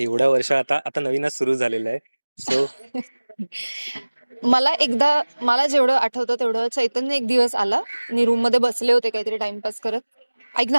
वर्ष आता आता नवीनच सुरू झालेलं आहे. सो मला जेवढं आठवतं तेवढं, चैतन्य एक दिवस आला. मी रूम मध्ये बसले होते काहीतरी टाइमपास करत. ऐक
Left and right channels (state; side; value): inverted; both; correlation -1.00